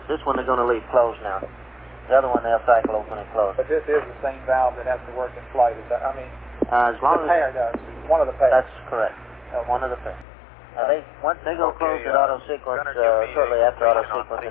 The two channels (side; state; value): right; drops out; at 10.2 s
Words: This one they're going to leave closed now. The other one they'll cycle open and close. But this is the same valve that has to work in flight. Is that? I mean, as long the pair does. One of the pairs. That's correct. One of the pairs. Once they go close at auto sequence, shortly after auto sequence,